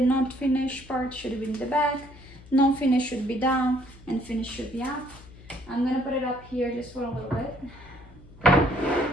finished part should be in the back. Non-finish should be down and finish should be up. I'm gonna put it up here just for a little bit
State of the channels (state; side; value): noise; left; hum, 21 dB below the sound